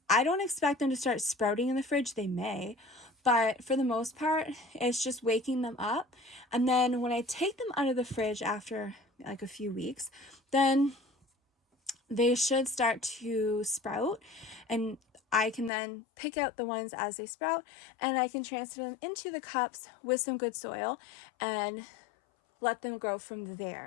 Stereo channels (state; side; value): drops out; right; at 15.7 s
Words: I don't expect them to start sprouting in the fridge. They may, but for the most part, it's just waking them up. And then when I take them out of the fridge after like a few weeks, then they should start to sprout, and I can then pick out the ones as they sprout, and I can transfer them into the cups with some good soil and let them grow from